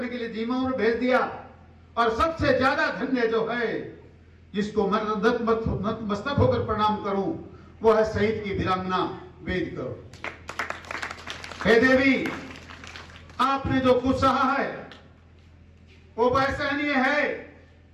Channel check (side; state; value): both; identical; correlation 1.00